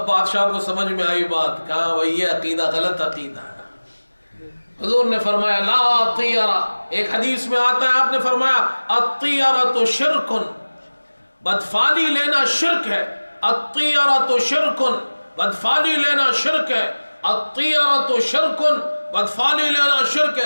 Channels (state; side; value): inverted; both; correlation -1.00